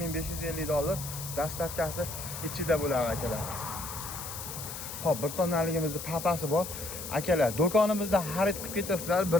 dastavkasi ichida bo'ladi akalar. Hop, bir tonnaligimizning papasi bor. Akalar, do'konimizda xarid qilib ketasizlar,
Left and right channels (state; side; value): noise; left; hiss, 8 dB below the sound